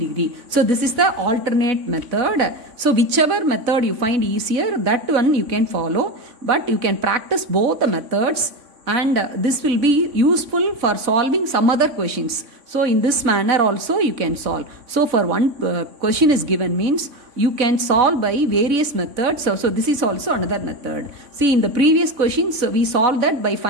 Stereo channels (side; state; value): left; late; 3.5 ms